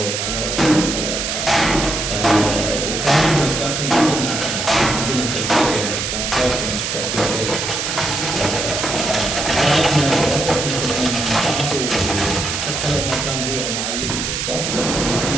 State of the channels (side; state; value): right; noise; hiss, 2 dB below the sound